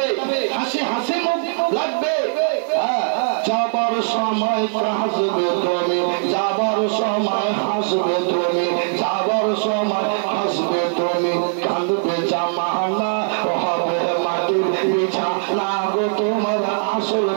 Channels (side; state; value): left; silent; digital silence